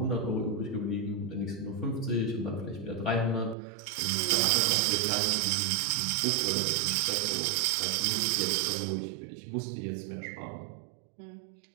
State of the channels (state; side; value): drops out; left; at 3.6 s